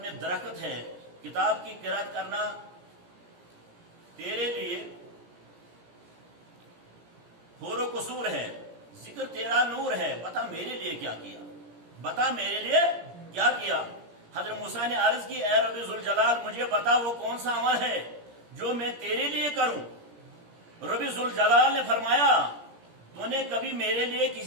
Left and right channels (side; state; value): left; late; 17 ms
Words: میں درخت ہے، کتاب کی قرأت کرنا تیرے لیے حور و قصور ہے، ذکر تیرا نور ہے، بتا میرے لیے کیا کیا، بتا میرے لیے کیا کیا۔ حضرت موسیٰ نے عرض کی، اے رب ذوالجلال مجھے بتا وہ کون سا عمل ہے جو میں تیرے لیے کروں۔ رب ذوالجلال نے فرمایا، تو نے کبھی میرے لیے